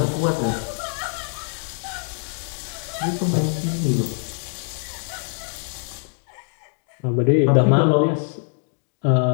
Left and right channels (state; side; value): silent; right; 58 dB below the other